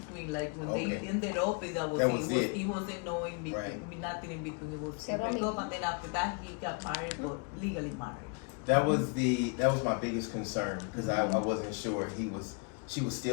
Like when Okay. they ended up, it wasn't no in between, Right. nothing in between. It was Cero break up, mismo. and then after that he got married, but legally married. That was my biggest concern because I wasn't sure she was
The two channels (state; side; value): quieter; right; 35.4 dB